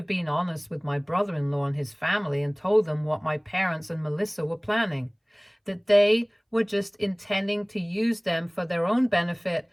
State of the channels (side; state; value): both; identical; correlation 1.00